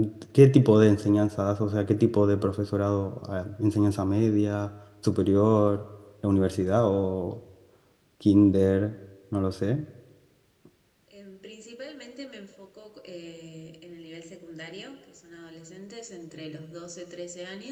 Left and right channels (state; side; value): identical; both; correlation 1.00